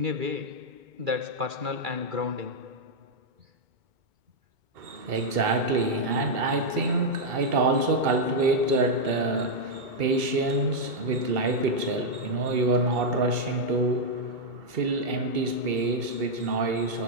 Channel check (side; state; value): left; late; 2.7 ms